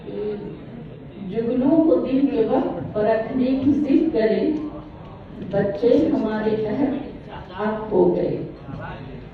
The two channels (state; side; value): identical; both; correlation 1.00